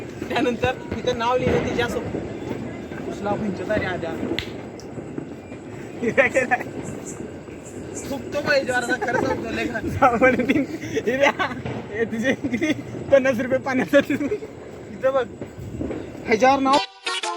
त्यानंतर तिथं नाव लिहिलं तिच्या उसला पंचतारी आद्या खूप तो पाहिजे खरं सांगतो तिचे किती 50 रुपये पाण्यात तिथं बघ ह्याच्यावर नाव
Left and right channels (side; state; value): both; identical; correlation 1.00